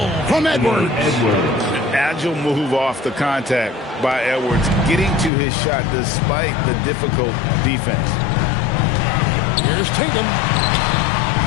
from Edwards. Agile move off the contact by Edwards, getting to his shot despite the difficult defense. Here's Tatum.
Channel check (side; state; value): right; drops out; at 5.3 s